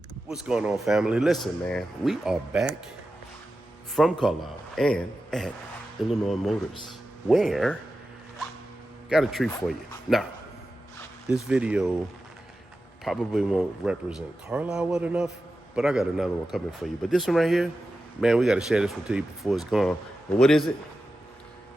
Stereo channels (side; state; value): both; normal; correlation 0.92